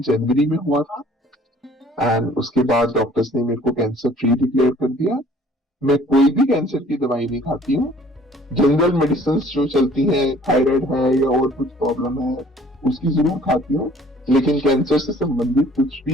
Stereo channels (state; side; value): normal; both; correlation 0.55